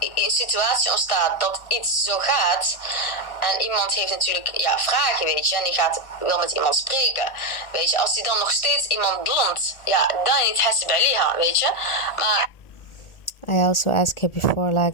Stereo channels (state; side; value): late; right; 1.4 ms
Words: een situatie ontstaat dat iets zo gaat, en iemand heeft natuurlijk vragen, weet je, en die wil met iemand spreken, weet je, als die dan nog steeds iemand ظلmt, dan niet حاسب عليها, weet je. Maar I also asked her before, like,